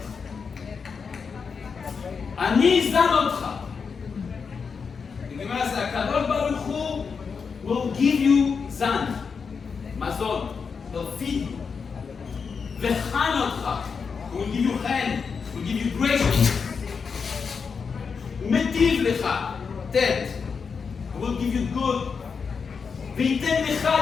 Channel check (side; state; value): right; quieter; 5.7 dB